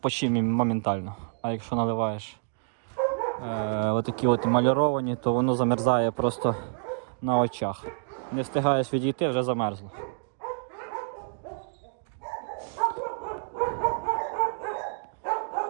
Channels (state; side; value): silent; left; digital silence